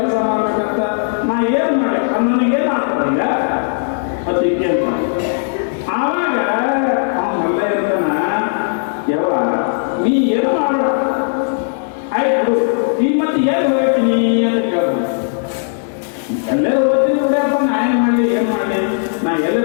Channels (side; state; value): right; silent; digital silence